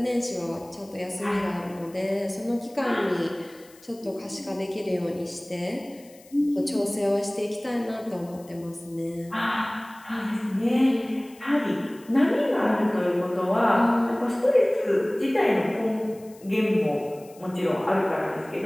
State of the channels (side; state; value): left; noise; hiss, 25 dB below the sound